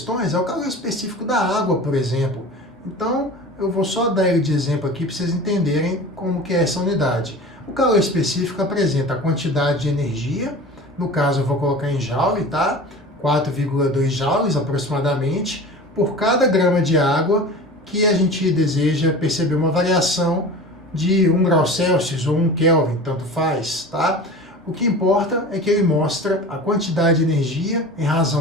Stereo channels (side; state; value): both; normal; correlation 0.36